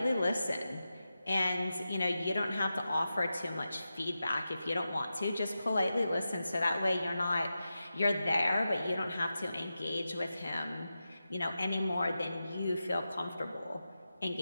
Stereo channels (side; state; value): both; inverted; correlation -0.91